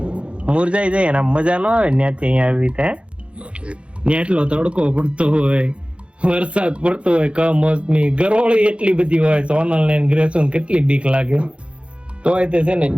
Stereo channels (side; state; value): left; late; 0.060 ms